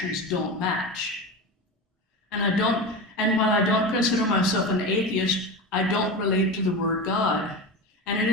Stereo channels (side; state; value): both; normal; correlation 0.25